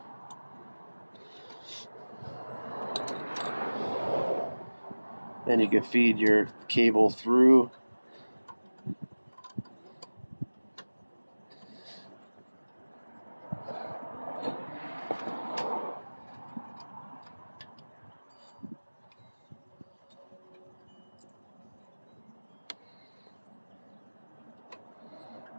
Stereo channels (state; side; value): inverted; both; correlation -1.00